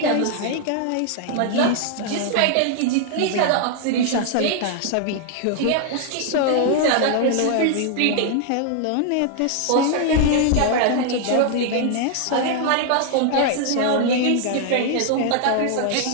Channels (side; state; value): both; different; correlation 0.00